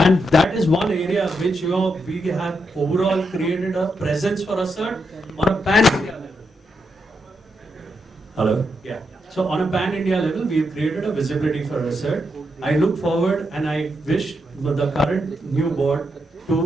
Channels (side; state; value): both; normal; correlation 0.82